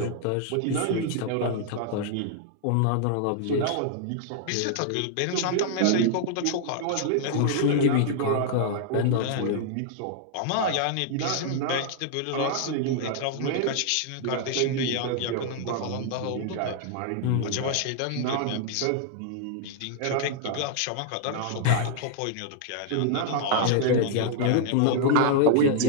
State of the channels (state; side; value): different; both; correlation 0.00